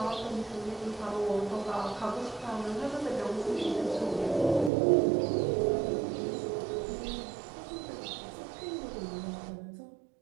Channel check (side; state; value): left; drops out; at 4.7 s